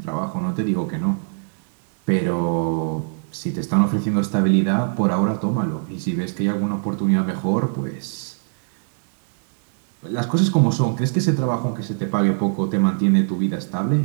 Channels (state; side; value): silent; left; digital silence